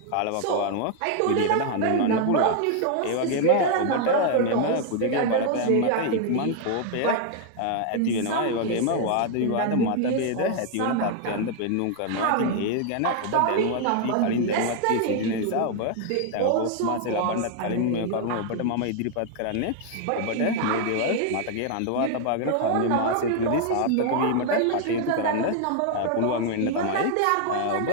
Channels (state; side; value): different; both; correlation 0.00